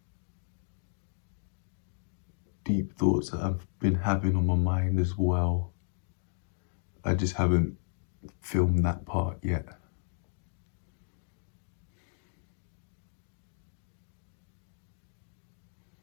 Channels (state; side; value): silent; right; digital silence